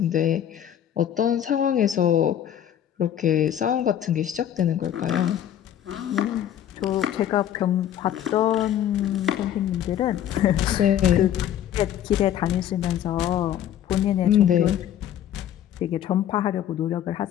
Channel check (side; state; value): right; quieter; 10.7 dB